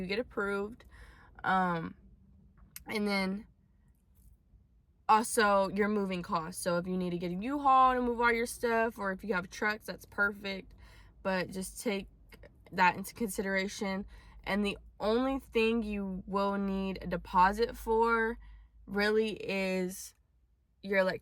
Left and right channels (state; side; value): identical; both; correlation 1.00